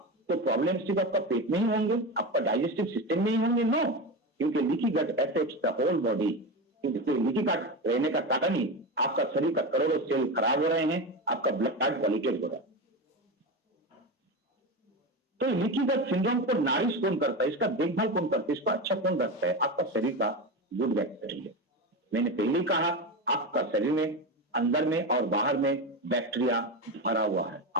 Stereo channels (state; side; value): normal; both; correlation 0.20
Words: तो प्रॉब्लम सिर्फ आपका पेट में ही होंगे, आपका डाइजेस्टिव सिस्टम में ही होंगे? नो, क्योंकि leaky gut affects the whole body. क्योंकि लीकी गट रहने का कारण ही आपका शरीर का करोड़ों सेल खराब हो रहे हैं, आपका ब्लड पॉल्यूटेड हो रहा है। तो लीकी गट सिंड्रोम को नारिश कौन करता है, इसका देखभाल कौन करता है, इसका अच्छा कौन रखता है? आपका शरीर का गुड बैक्टीरिया। मैंने पहले ही कहा आपका शरीर में अंदर में और बाहर में बैक्टीरिया भरा हुआ है,